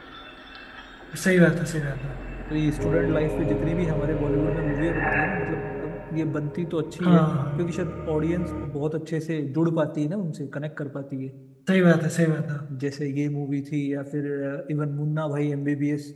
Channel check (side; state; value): both; identical; correlation 1.00